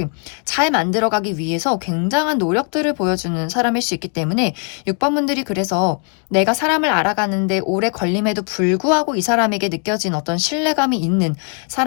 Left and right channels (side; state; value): right; quieter; 39.6 dB